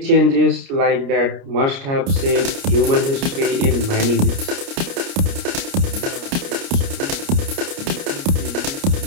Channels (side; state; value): left; late; 29 ms